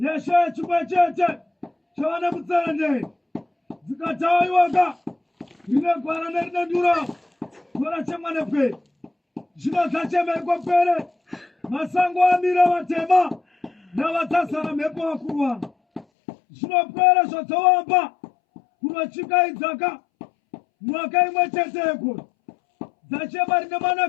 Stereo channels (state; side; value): drops out; right; at 16.1 s